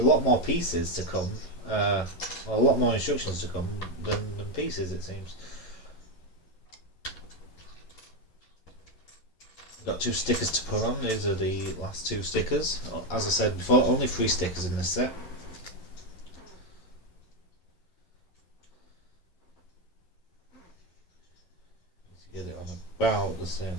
more pieces to come, or a lot more instructions to come than pieces, it seems. Got 2 stickers to put on. These are the last 2 stickers. As I said before, only 3 stickers in this set. Get it on about the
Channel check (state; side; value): late; right; 11 ms